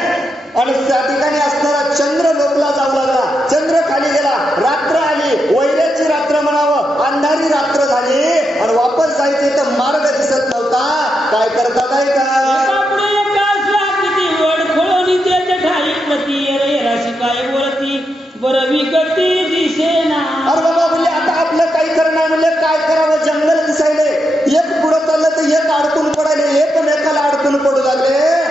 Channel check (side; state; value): both; normal; correlation 0.84